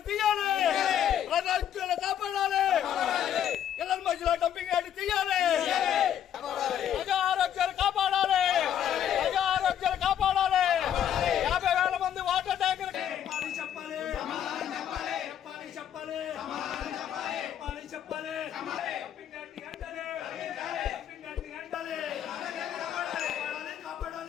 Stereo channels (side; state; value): right; quieter; 10.0 dB